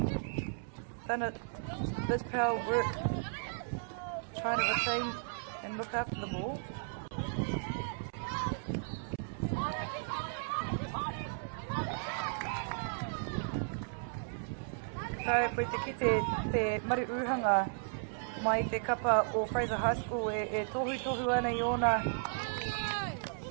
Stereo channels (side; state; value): left; silent; 54 dB below the other